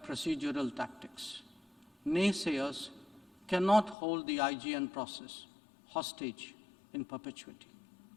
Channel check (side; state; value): right; drops out; at 4.0 s